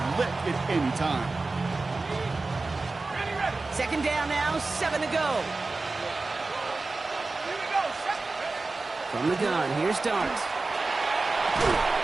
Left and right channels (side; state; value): left; quieter; 3.6 dB